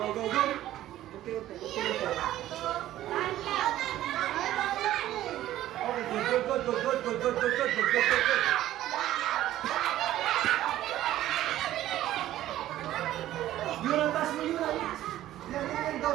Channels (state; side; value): quieter; left; 13.7 dB